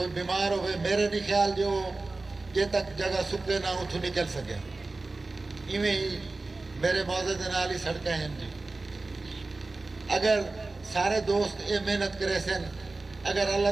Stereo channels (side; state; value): left; quieter; 3.4 dB